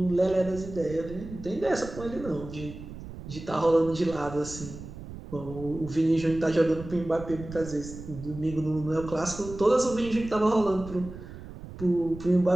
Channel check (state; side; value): noise; right; rumble, 12 dB below the sound